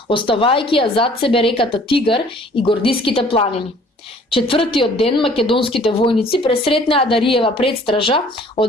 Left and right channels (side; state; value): both; normal; correlation 0.54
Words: оставајќи ја зад себе реката Тигар и Гордиските планини. Четвртиот ден македонските војници пресретнаа Дариева предстража